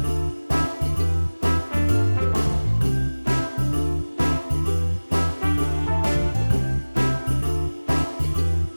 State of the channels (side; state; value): both; inverted; correlation -1.00